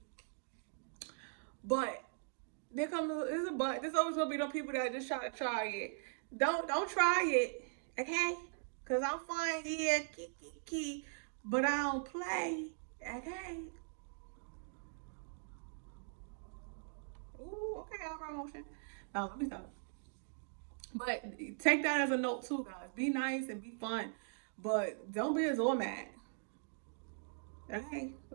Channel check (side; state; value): left; silent; digital silence